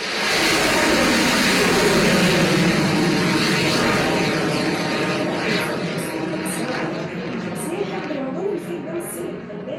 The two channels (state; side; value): identical; both; correlation 1.00